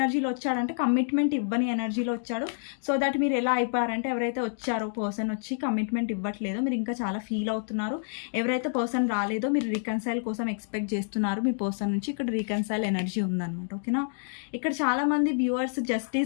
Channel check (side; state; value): right; silent; digital silence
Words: వచ్చాడంటే కమిట్మెంట్ ఇవ్వని ఎనర్జీలో వచ్చాడు. సో దట్ మీరు ఎలా అయిపోయారంటే ఎవరైతే వచ్చారో పర్సన్ వచ్చి కమిట్మెంట్ ఇవ్వట్లేదో మీరు ఇంకా చాలా ఫీల్ అవుతున్నారు. ఎవరైతే పర్సన్ రాలేదో మీరు రీకన్సైల్ కోసం ఎక్స్పెక్ట్ చేస్తున్నారు మీ పర్సన్ నుంచి. ఇక్కడ రీకన్సైల్ ఎనర్జీ ఉందన్నమాట, ఓకేనా. ఇక్కడ చాలా మంది వ్యూవర్స్